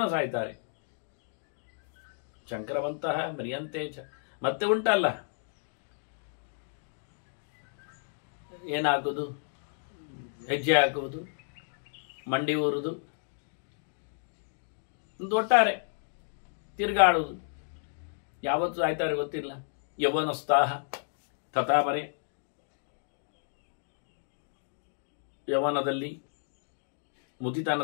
ಸಾಯ್ತಾರೆ. ಶಂಕರವಂತಹ ಮರಿಯಂತೇಚ. ಮತ್ತೆ ಉಂಟಲ್ಲ, ಏನಾಗುವುದು? ಹೆಜ್ಜೆ ಹಾಕುವುದು, ಮಂಡಿ ಊರುವುದು, ಒಂದು ಒಟ್ಟಾರೆ ತಿರುಗಾಡುವುದು. ಯಾವತ್ತು ಸಾಯ್ತಾರೆ ಗೊತ್ತಿಲ್ಲ. ಯೌವನೋತ್ಸಾಹ ತಥಾಮರೆ. ಯೌವನದಲ್ಲಿ,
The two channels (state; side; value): silent; right; digital silence